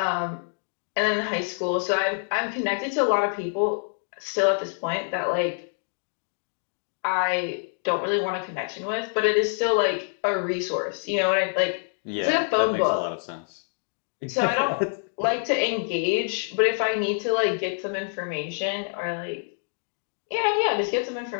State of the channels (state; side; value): silent; right; 61 dB below the other